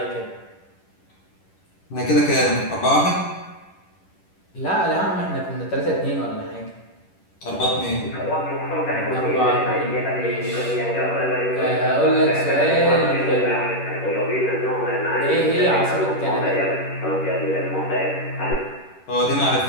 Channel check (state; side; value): late; right; 10 ms